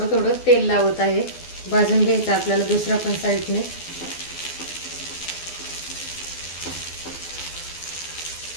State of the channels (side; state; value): right; late; 12 ms